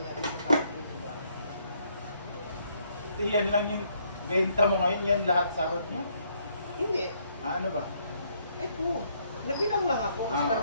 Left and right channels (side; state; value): both; inverted; correlation -0.70